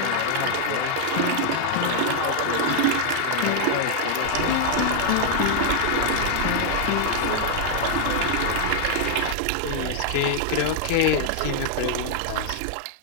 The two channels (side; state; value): both; different; correlation -0.01